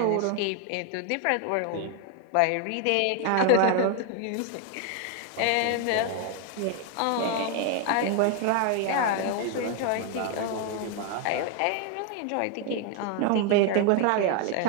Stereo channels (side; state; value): both; different; correlation 0.00